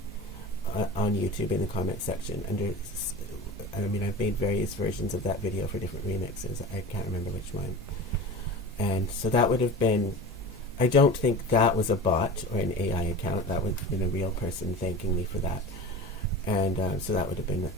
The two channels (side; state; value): both; normal; correlation 0.33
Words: on YouTube in the comment section. I mean, I've made various versions of that video for different remixes. I can't remember which one. And so that would have been. I don't think that was a bot or an AI account. That would have been a real person thanking me for that. And so that would have been